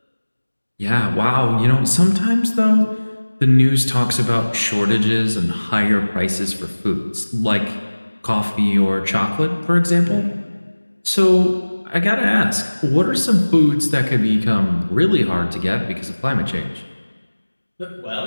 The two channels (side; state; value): both; inverted; correlation -1.00